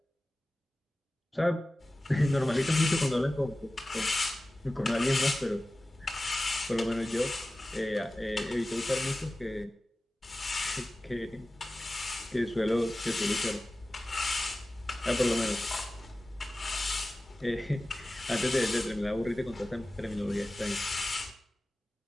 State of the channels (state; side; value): normal; both; correlation 0.96